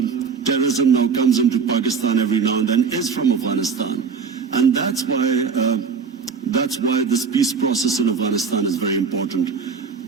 terrorism now comes into Pakistan every now and then is from Afghanistan, and that's why this peace process in Afghanistan is very important.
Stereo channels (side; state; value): left; quieter; 5.7 dB